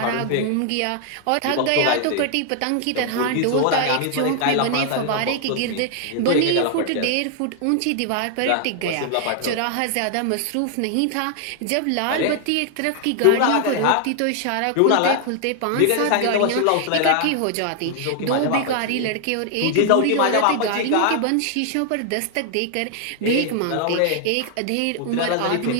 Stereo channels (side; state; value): both; different; correlation 0.00